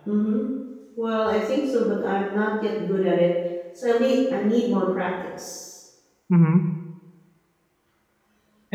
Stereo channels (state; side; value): identical; both; correlation 1.00